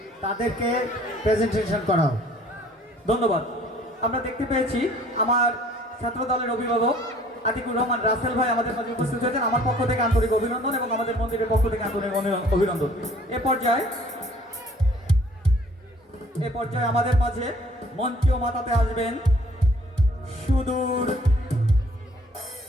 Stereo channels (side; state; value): both; normal; correlation 0.56